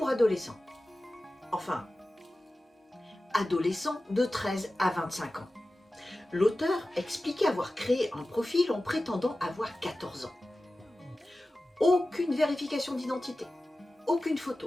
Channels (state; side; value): normal; both; correlation 0.95